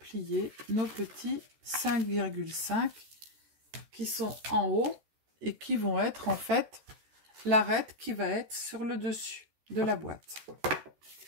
nos petits 5,5 qui sont en haut et qui vont être en fait l'arête qui va être sur le dessus de la boîte.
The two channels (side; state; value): left; late; 14 ms